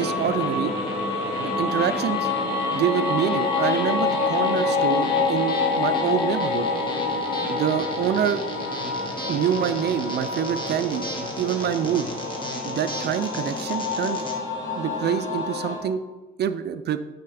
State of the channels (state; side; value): normal; both; correlation 0.22